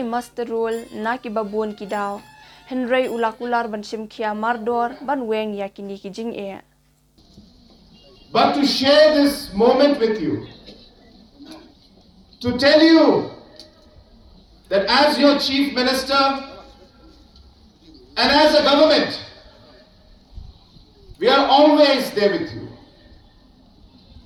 master role na ki babun ki daw henry Kular ban shimkhia mardor ban weng ya kini ki jing But to share this moment with you, to tell you that as your Chief Minister and as a government, we are always there with you.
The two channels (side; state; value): both; identical; correlation 1.00